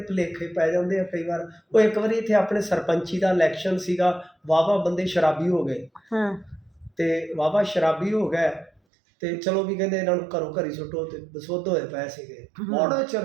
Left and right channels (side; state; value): left; drops out; at 8.7 s